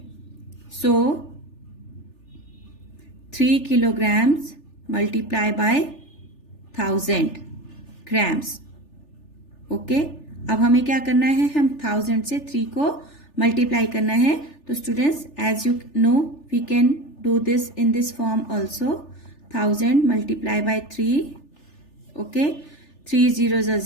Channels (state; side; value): late; right; 3.4 ms